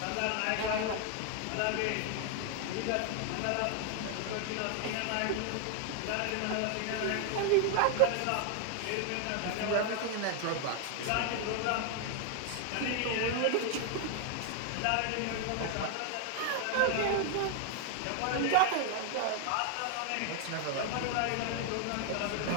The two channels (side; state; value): both; different; correlation 0.00